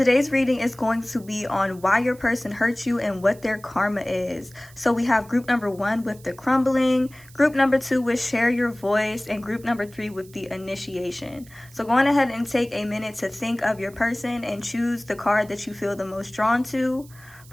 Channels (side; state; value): right; noise; hiss, 24 dB below the sound